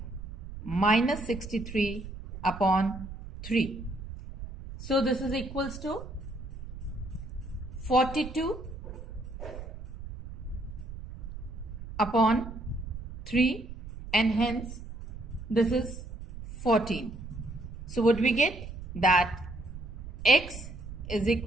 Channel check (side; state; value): right; noise; rumble, 11 dB below the sound